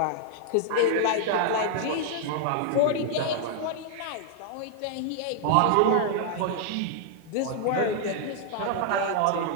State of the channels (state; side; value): different; both; correlation -0.01